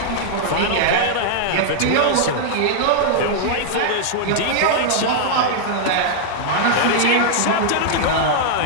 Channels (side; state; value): both; different; correlation -0.01